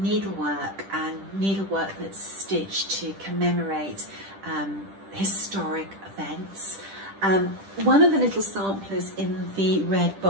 and needlework that's stitched to commemorate historic events. One of the little samplers in the red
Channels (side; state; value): left; late; 10 ms